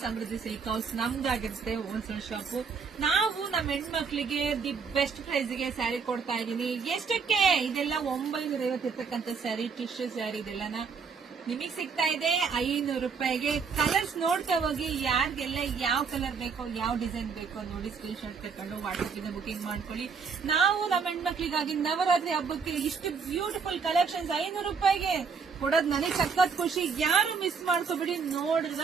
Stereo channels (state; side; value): quieter; left; 5.6 dB